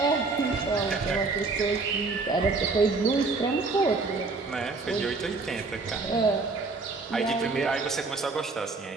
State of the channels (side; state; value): left; quieter; 3.9 dB